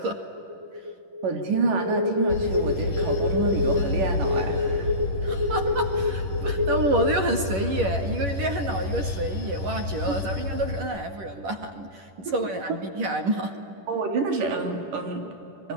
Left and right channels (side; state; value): left; late; 11 ms